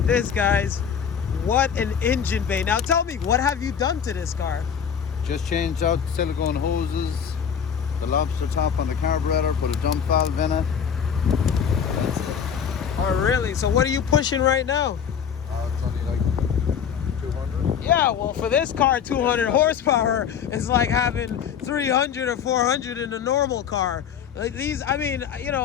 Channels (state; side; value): quieter; right; 7.7 dB